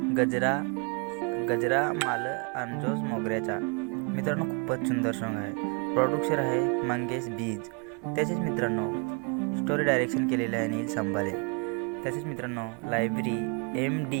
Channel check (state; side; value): quieter; left; 35.2 dB